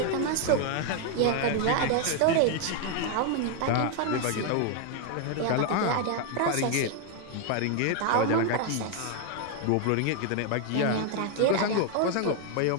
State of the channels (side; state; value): both; different; correlation 0.01